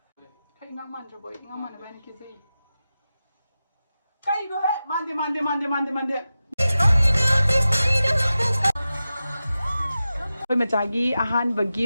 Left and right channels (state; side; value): inverted; both; correlation -0.93